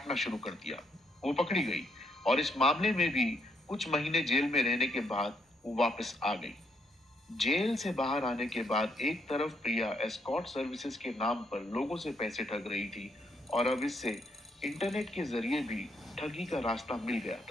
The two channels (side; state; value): both; normal; correlation 0.74